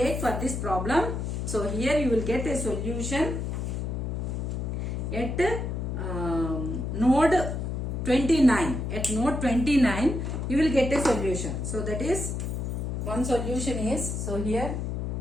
for this problem, so here you will get a solution at node 29. At node 29 you will get a solution. So that is one solution is, so here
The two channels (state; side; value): noise; left; hum, 3 dB below the sound